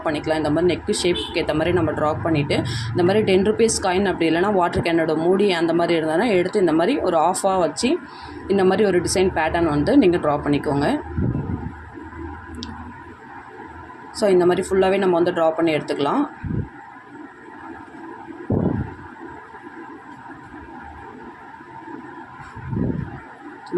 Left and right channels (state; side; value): identical; both; correlation 1.00